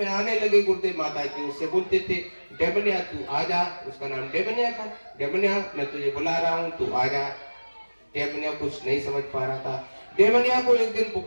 आने लगे गुरुदेव माता जी, उससे बोलते थे डेमनिया तू आजा। उसका नाम डेमनिया था। डेमनिया मैं तुझे बुला रहा हूँ, तू आजा। डेमनिया कुछ नहीं समझ पा रहा था। डेमनिया को एक दिन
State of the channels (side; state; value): both; inverted; correlation -1.00